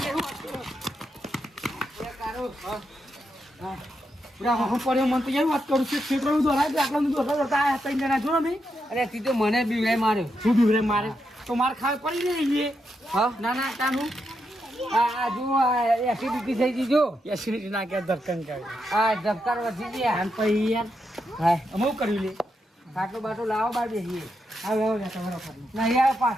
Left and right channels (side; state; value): both; normal; correlation 0.83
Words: પૂરા હું પડ્યો મને તો એવી વાત કરું છું ક્ષેત્રમાં દોરાય તો આટલા દોરતા આ ત્રણ જણા જો ને અરે તી તો મને બી માર્યો શું બીવરે મારે તો મારે ખાવે પડી રહી હા ના ના તાનું આ જુઓ એસિડિટી થઈ ગઈ જો એસિડિટી ના કે ધરકન કરે આ ધબકાર વધી ગયા આન પછી યાર હા અમુક કર્યું લે ખાટલો બાટલો લાવો બાર બેસીએ આવે આવે તમારો ખાટલો ના યાર